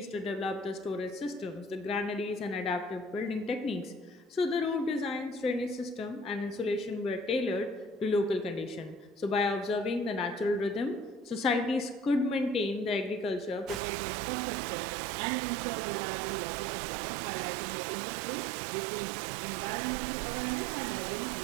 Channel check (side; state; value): left; drops out; at 13.8 s